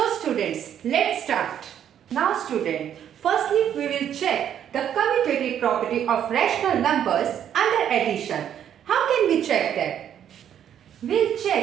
students, let's start. Now student, firstly we will check the commutative property of rational numbers under addition. How can we check that? We'll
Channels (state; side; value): quieter; left; 9.7 dB